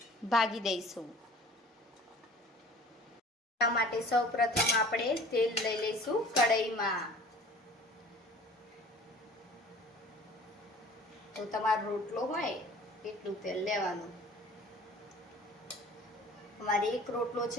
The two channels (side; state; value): both; normal; correlation 0.47